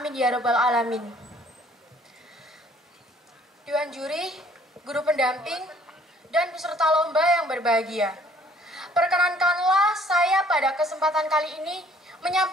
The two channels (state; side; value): normal; both; correlation 0.59